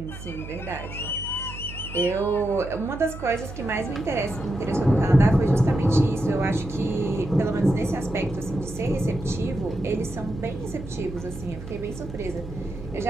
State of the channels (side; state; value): right; noise; hum, 12 dB below the sound